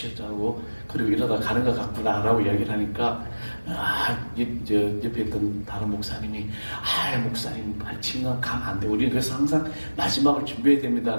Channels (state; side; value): inverted; both; correlation -1.00